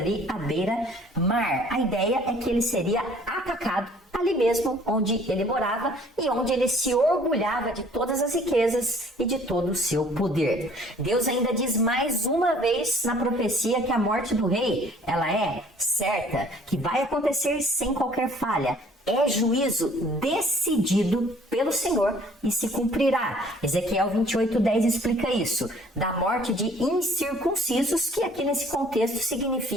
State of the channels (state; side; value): normal; both; correlation 0.56